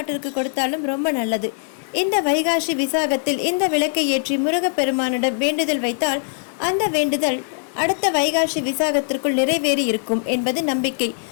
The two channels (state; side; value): silent; right; 65 dB below the other